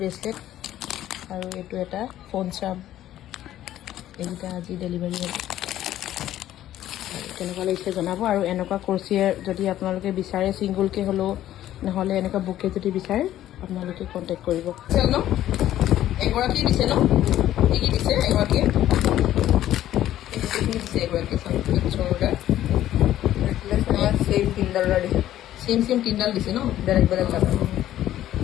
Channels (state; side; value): quieter; right; 12.9 dB